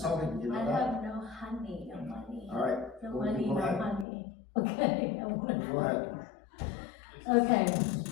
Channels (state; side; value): drops out; right; at 4.0 s